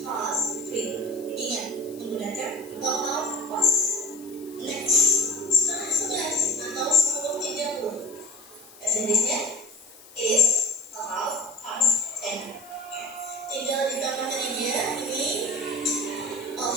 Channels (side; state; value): left; noise; hiss, 21 dB below the sound